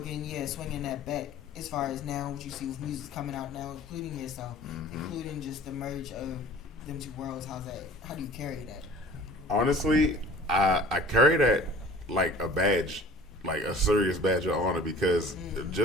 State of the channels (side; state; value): both; normal; correlation 0.45